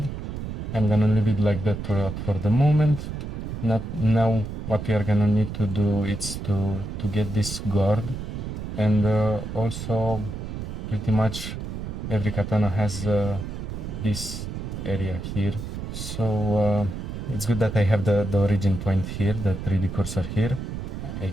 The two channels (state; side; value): noise; right; rumble, 6 dB below the sound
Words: I'm gonna leave it like that for the moment. Now what we are gonna need to do is to get this guard, and also pretty much every katana has this area here, so it's good that I have the origin point here, the 3D cursor here. I